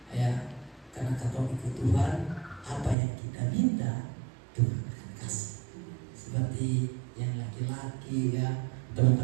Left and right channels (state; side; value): drops out; left; at 3.0 s